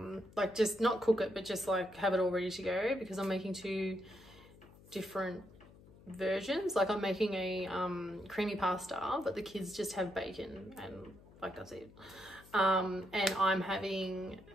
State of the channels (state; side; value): noise; left; hum, 22 dB below the sound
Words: like just not cook it, but just like have it all ready to go, because I'm making 2 different versions. Like I'm making a creamy pasta, but the kids just have bacon and like that's it. And I'm having